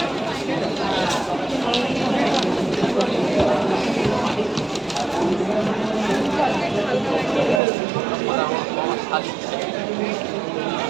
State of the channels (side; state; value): left; drops out; at 7.6 s